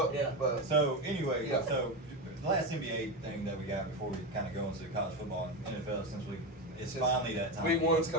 Yeah. But So anyway, Yeah. so the last NBA thing that we got before we kind of go into college football and NFL, since it's finally that time. Week 1's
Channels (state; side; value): normal; both; correlation 0.16